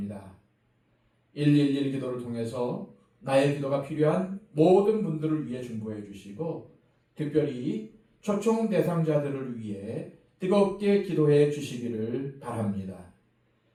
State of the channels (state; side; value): identical; both; correlation 1.00